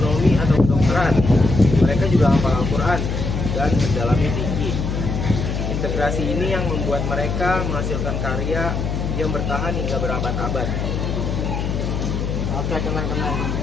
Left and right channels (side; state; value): left; noise; hum, 2 dB below the sound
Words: atau kedokteran. Mereka juga hafal Al-Quran dan mendalami fikih. Integrasi ini yang membuat mereka menghasilkan karya yang bertahan hingga berabad-abad. Oke teman-teman,